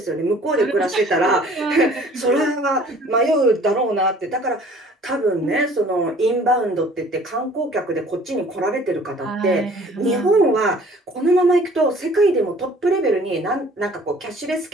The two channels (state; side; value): normal; both; correlation 0.52